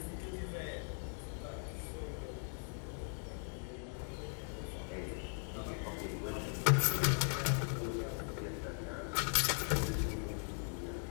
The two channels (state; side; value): silent; right; 51 dB below the other